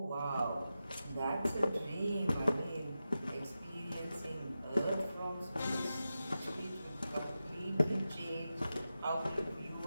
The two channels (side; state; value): both; inverted; correlation -0.92